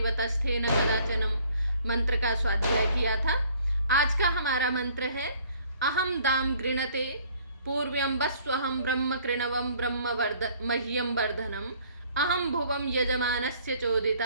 वतस्थे न कदाचनम मंत्र का स्वाध्याय किया था। आज का हमारा मंत्र है अहम दाम गृणते पूर्व्यं वस्वहं ब्रह्म कृणवं ब्रह्म मह्यं वर्धनम अहम भुवम यजमानस्य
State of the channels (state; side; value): inverted; both; correlation -0.58